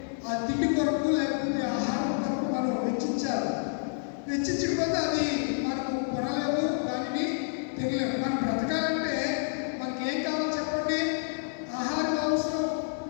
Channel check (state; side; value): silent; right; 59 dB below the other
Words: ఆ తిండి కొరకు లేకపోతే ఆహారం కొరకు మనం వెచ్చించాలి. వెచ్చించకపోతే అది మనకు కొనలేము, దానిని తినలేము. మనం బ్రతకాలంటే మనకి ఏం కావాలో చెప్పండి? ఆహారం అవసరం.